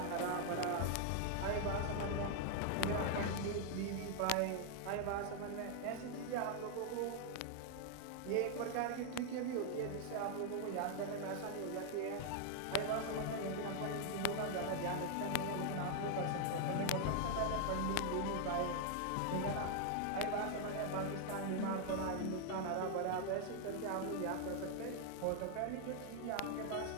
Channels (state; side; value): different; both; correlation 0.00